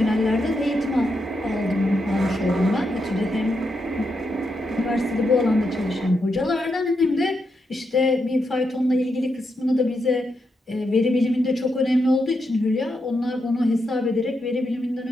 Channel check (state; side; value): normal; both; correlation 0.83